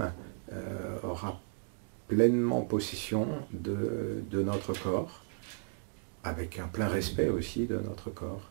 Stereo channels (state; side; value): silent; left; digital silence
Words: aura pleinement possession de notre corps, avec un plein respect aussi de notre corps.